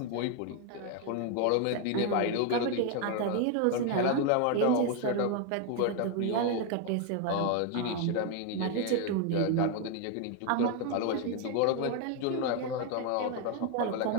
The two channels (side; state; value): both; different; correlation 0.01